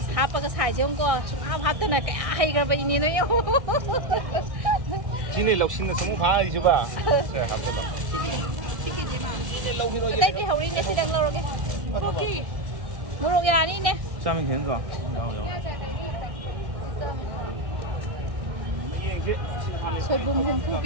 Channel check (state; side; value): late; left; 1.6 ms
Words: hapag sai jong ko hap ta na cái hay cái vậy ni nó yêu Sini loksin na samu pha ai chu ba. Se hap ta lo. đây thì hầu đi nè xí tầng lâu cái ok mua đồ nhà đi nè 下面田子有 soi bùm hum phu